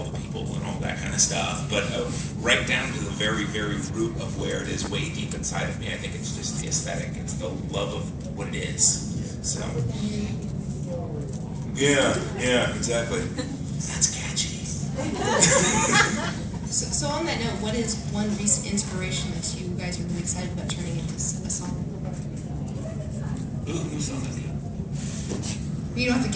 the people and all that kind of stuff. But right down to the very, very root of where it is, way deep inside of me, I think it's just the aesthetic. It's the love of what it is. So. Yeah, exactly. That's catchy. So on that note, what is one recent inspiration that you guys are really excited about turning into a song? Ooh, new song. You don't have to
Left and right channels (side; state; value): both; identical; correlation 1.00